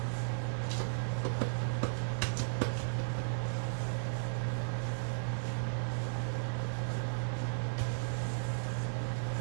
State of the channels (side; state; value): left; silent; digital silence